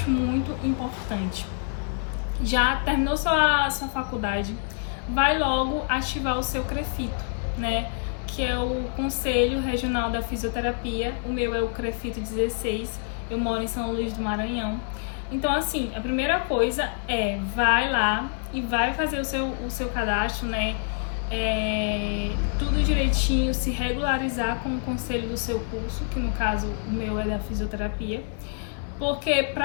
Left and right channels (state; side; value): silent; right; 60 dB below the other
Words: muito importante. Já terminou sua faculdade, vai logo ativar o seu CREFITO, né? Que é o Conselho Regional da Fisioterapia. O meu é o CREFITO 16, eu moro em São Luís do Maranhão. Então, assim, a primeira coisa é, vai lá e vai fazer o seu cadastro, né? Tudo direitinho, se regularizar com o conselho do seu curso, que no caso o meu é da fisioterapia. Porque